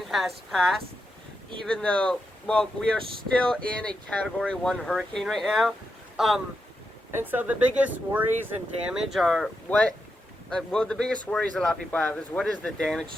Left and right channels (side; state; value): both; normal; correlation 0.86